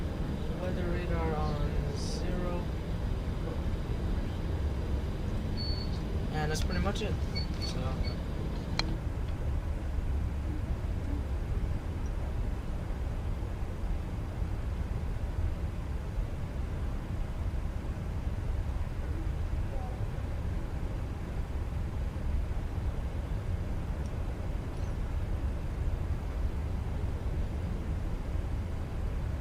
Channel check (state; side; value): identical; both; correlation 1.00